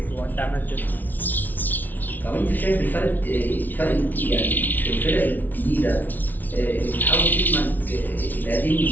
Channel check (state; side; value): late; right; 0.083 ms